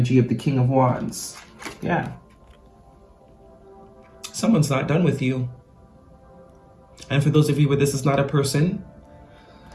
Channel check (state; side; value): identical; both; correlation 1.00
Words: of the King of Wands. Yeah. Someone's not done with you. And for those of you where this is not a person,